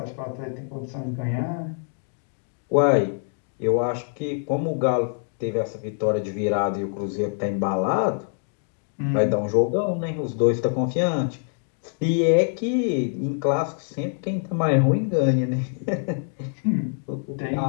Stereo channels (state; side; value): silent; right; 62 dB below the other